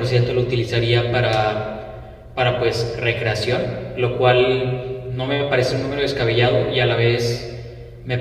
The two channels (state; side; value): identical; both; correlation 1.00